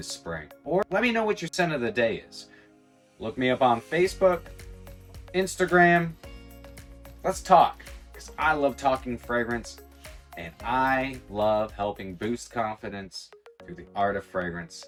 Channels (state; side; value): identical; both; correlation 1.00